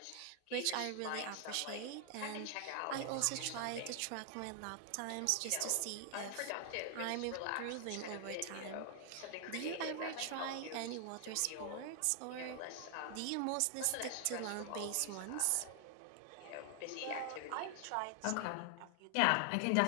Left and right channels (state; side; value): different; both; correlation 0.00